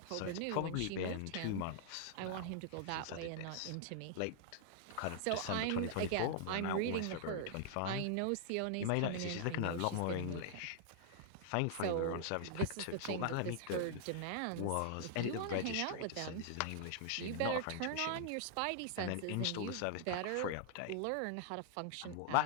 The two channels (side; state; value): both; different; correlation -0.01